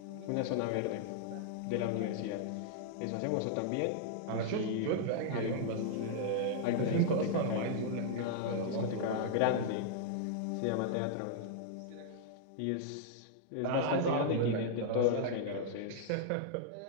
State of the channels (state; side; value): different; both; correlation -0.01